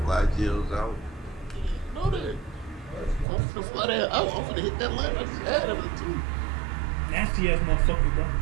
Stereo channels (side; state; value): left; drops out; at 3.2 s